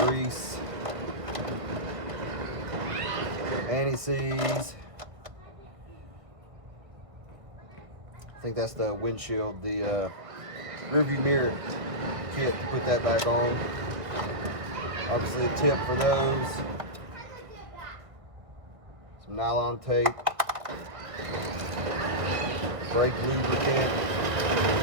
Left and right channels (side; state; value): left; late; 1.5 ms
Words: grease, anti-seize. I think that's the windshield, the rearview mirror kit to put that back on. Obviously a tip for those. Some nylon tape. Brake lubricant.